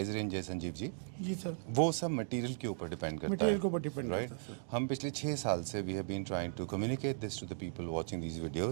रेंज है संजीव जी, जी सर, वो सब मटेरियल के ऊपर डिपेंड करता है। मटेरियल के ऊपर डिपेंड राइट। करता है सर। हम पिछले 6 साल से we have been trying to communicate this to the people watching these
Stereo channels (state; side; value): silent; left; digital silence